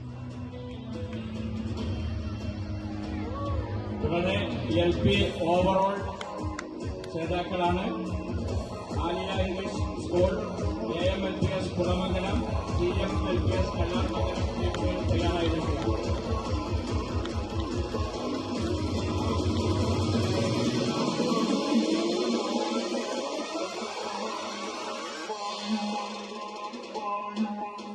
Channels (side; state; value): both; identical; correlation 1.00